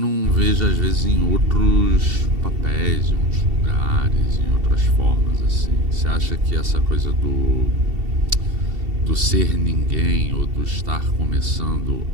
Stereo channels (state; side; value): late; left; 2.7 ms